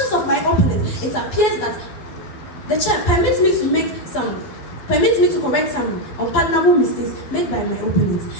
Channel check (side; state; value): right; late; 12 ms